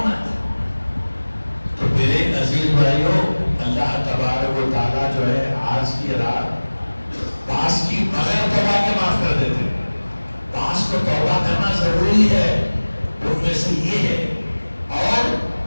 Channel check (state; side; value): inverted; both; correlation -1.00